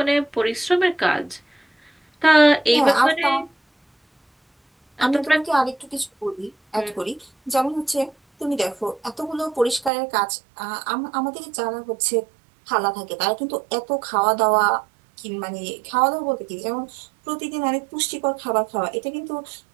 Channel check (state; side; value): drops out; left; at 9.9 s